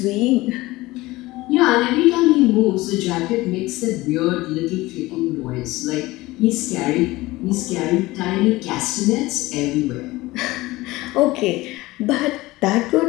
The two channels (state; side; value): quieter; right; 19.5 dB